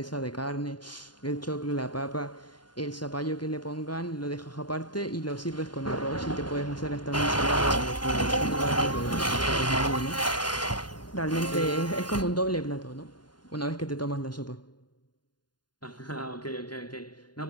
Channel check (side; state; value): right; late; 0.70 ms